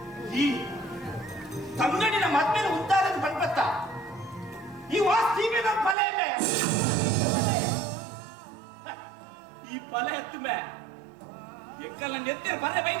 ಈ ತಂಗಡಿನ ಮದ್ಮೇಲೆ ಉದ್ದಾರದ ಬಂದ್ಬತ್ತ ಈ ವಾಸ್ತಿಗೆ ನಮ್ಮ ಫಲ ಇಲ್ಲ ಈ ಫಲ ಎತ್ತು ಮೇ ಎಕ್ಕಲ್ಲ ನೆತ್ತಿರ ಬರ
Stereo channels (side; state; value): left; drops out; at 6.0 s